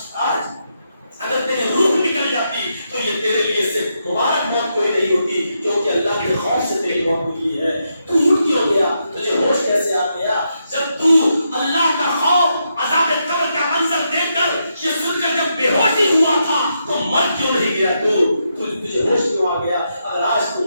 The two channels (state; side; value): inverted; both; correlation -0.82